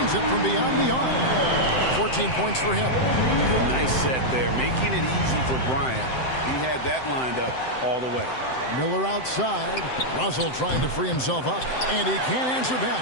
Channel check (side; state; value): right; late; 7.8 ms